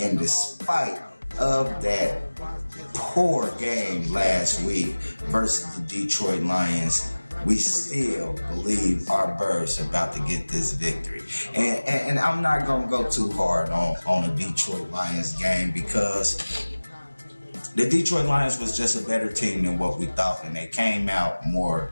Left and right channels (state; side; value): inverted; both; correlation -1.00